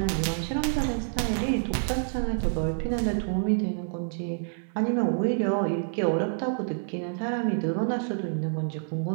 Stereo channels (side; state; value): left; silent; digital silence